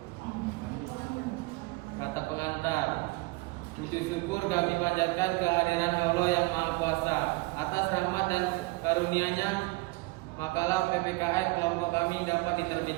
Kata pengantar. Puji syukur kami panjatkan kehadiran Allah yang Maha Kuasa atas rahmat dan karunia-Nya. Makalah PPKN kelompok kami dapat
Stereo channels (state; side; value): quieter; left; 23.7 dB